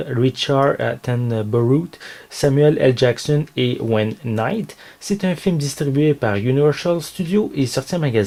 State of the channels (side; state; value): both; identical; correlation 1.00